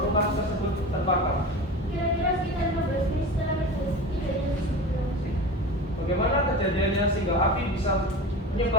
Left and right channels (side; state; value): both; normal; correlation 0.32